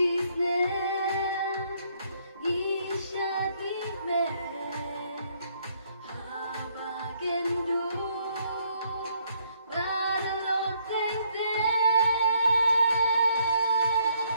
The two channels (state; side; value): inverted; both; correlation -0.70